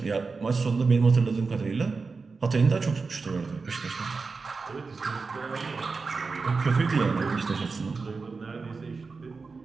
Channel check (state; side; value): quieter; left; 4.4 dB